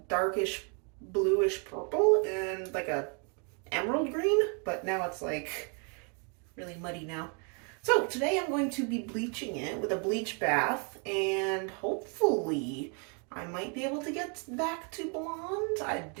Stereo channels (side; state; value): left; quieter; 37.5 dB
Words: darkish bluish purple and like a emerald green, but now it's like really muddy now. So today I'm going to be bleaching it with a bleach bath, and hopefully I might be able to get back to blonde. I